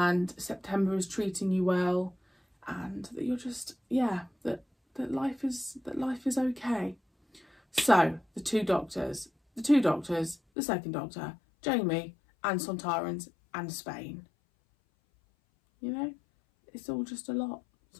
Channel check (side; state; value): right; drops out; at 10.4 s